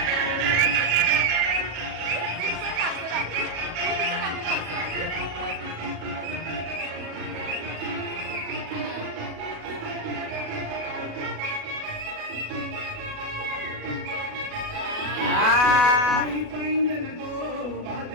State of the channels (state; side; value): late; left; 37 ms